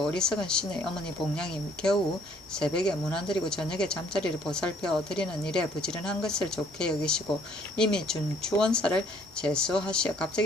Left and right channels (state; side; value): normal; both; correlation 0.62